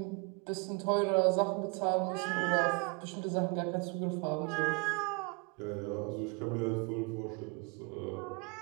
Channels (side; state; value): left; quieter; 31.4 dB